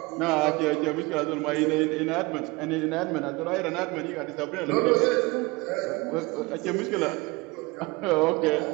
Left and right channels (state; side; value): quieter; left; 24.3 dB